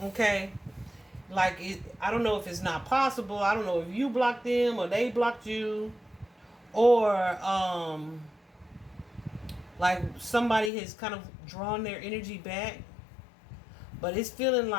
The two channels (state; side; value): drops out; right; at 10.7 s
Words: Okay? Like I don't know if it's not possible. I don't know if you blocked them or they blocked you, or like somebody has kind of drawn their energy back. But it's feeling